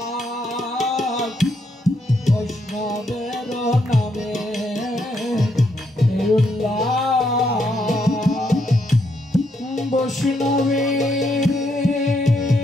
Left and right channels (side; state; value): both; normal; correlation 0.77